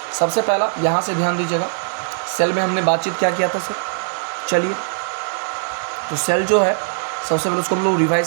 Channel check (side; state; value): left; silent; digital silence